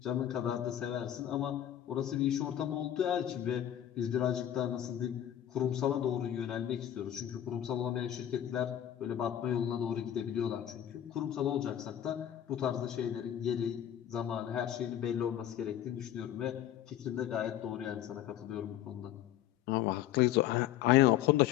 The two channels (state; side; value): quieter; right; 11.2 dB